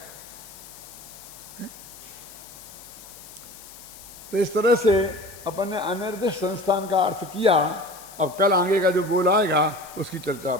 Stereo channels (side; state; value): left; noise; hiss, 17 dB below the sound